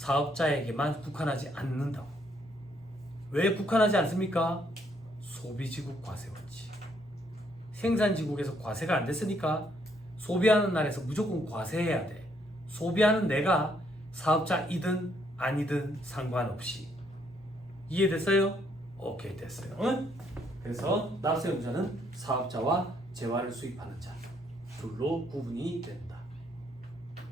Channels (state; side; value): normal; both; correlation 0.71